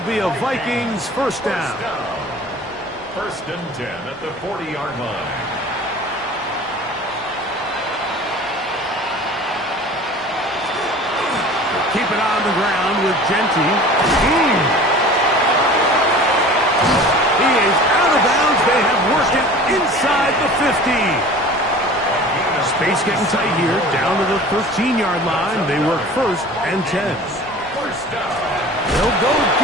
be a Vikings first down. First and 10 at the 40-yard line. Keep it on the ground with Genty. He is out of bounds. They have worked it inside the 50. Space getting tight here. Down to the 13-yard line. They work first and 10. They'll go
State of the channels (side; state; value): both; normal; correlation 0.42